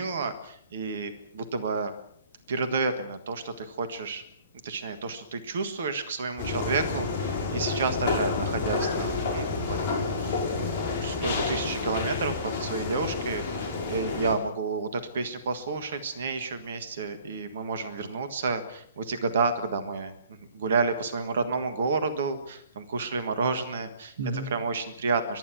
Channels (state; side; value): inverted; both; correlation -0.51